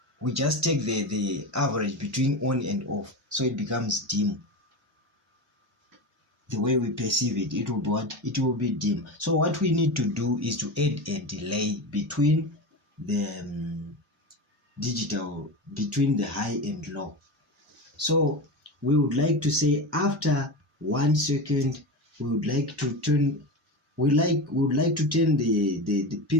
we just take the average between on and off, so it becomes dim. The way we perceive it, it will be what? It will be dim. So what we need to do is to add a delay between the digital, between the high and low. So we would like to say after 1 second, we would like to turn, we would like to turn the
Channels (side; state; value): both; normal; correlation 0.23